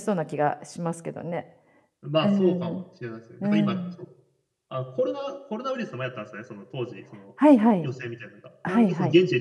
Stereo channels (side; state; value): both; identical; correlation 1.00